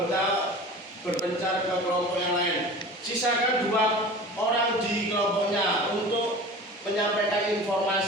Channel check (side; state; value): both; normal; correlation 0.38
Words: berpencar ke kelompok yang lain. Sisakan 2 orang di kelompoknya untuk menyampaikan